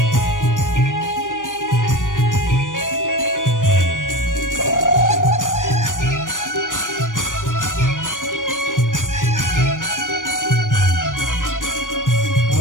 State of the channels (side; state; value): right; late; 0.88 ms